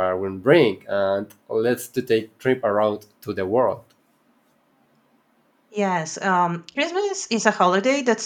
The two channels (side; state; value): both; identical; correlation 1.00